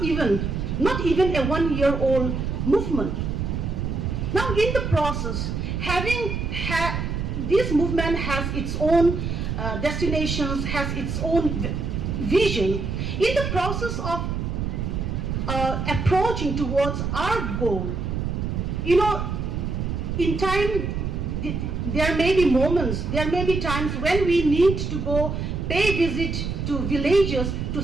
even a 1-year-old movement. Now in the process, this movement has its own destinations, has its own vision. In the process of approaching towards our goal, in time, there may be moments, there may be times when we need to go pay visit to villages to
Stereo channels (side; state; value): right; noise; rumble, 2 dB below the sound